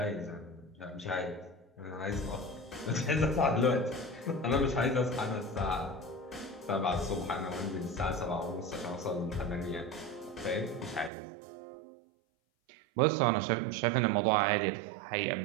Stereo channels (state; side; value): drops out; left; at 11.1 s